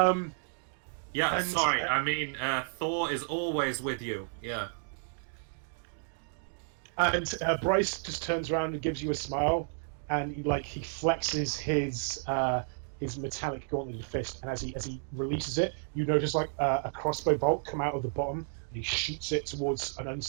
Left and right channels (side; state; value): left; silent; digital silence